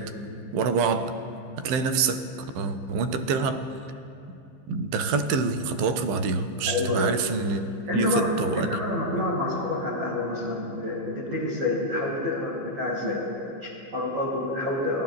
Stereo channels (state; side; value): late; left; 15 ms